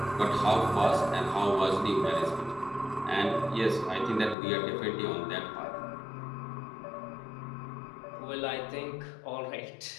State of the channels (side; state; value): right; drops out; at 4.4 s